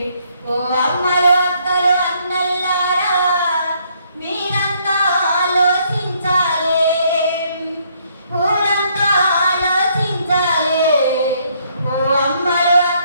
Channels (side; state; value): both; inverted; correlation -0.68